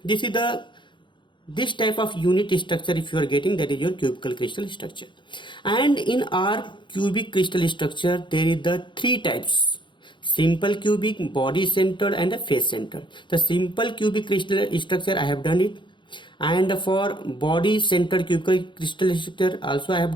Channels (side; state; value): right; late; 0.23 ms